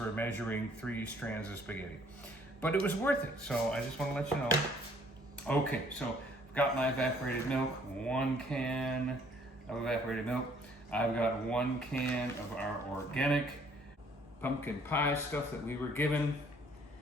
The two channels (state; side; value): normal; both; correlation 0.61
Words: measuring 3 strands of spaghetti. But it was worth it, so I just want to let you know. Okay, so I've got my evaporated milk, 1 can of evaporated milk. I've got 1 can of our organic pumpkin pie stuff that we were given